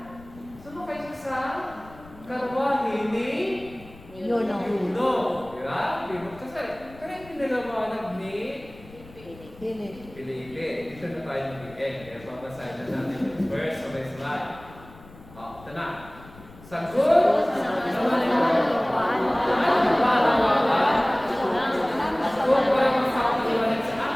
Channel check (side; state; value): left; noise; rumble, 21 dB below the sound